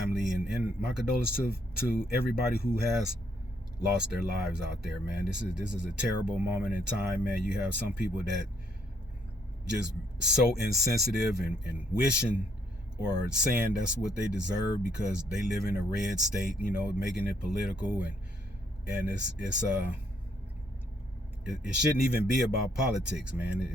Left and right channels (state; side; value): normal; both; correlation 0.71